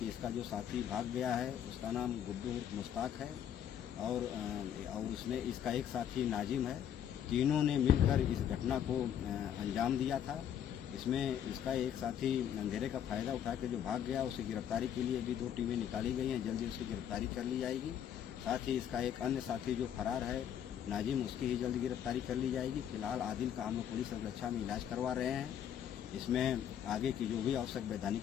इसका जो साथी भाग गया है उसका नाम गुड्डू मुश्ताक है और उसने इसका एक साथी नाजिम है। तीनों ने मिलकर इस घटना को अंजाम दिया था। इसमें इसका एक साथी अंधेरे का फायदा उठा के जो भाग गया, उसे गिरफ्तारी के लिए भी 2 टीमें निकाली गई हैं। जल्दी उसकी गिरफ्तारी कर ली जाएगी। साथ ही इसका एक अन्य साथी जो फरार है नाजिम, उसकी ही जल्द गिरफ्तारी कर ली जाएगी। फिलहाल आदिल का हम लोग पुलिस सुरक्षा में इलाज करवा रहे हैं। इसमें आगे की जो भी आवश्यक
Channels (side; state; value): right; quieter; 9.5 dB